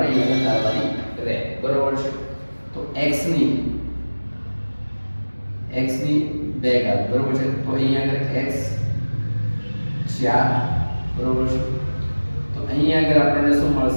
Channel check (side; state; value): both; inverted; correlation -1.00